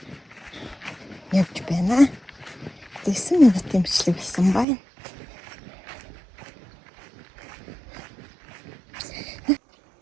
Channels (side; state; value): left; drops out; at 4.7 s